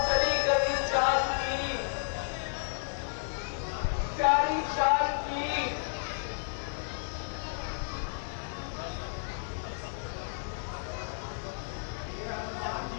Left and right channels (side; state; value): right; silent; 56 dB below the other